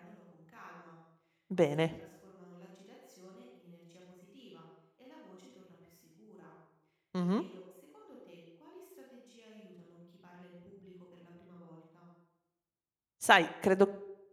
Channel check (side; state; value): both; identical; correlation 1.00